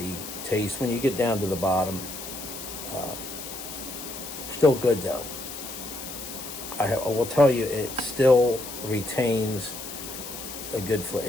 taste. When you get down to the bottom, still good though. I will tell you, it still retains a good flavor.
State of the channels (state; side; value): noise; left; hiss, 10 dB below the sound